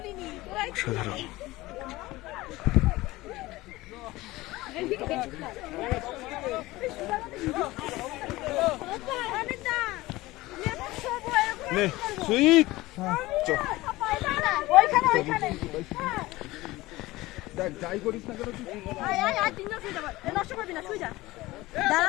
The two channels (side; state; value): right; quieter; 19.2 dB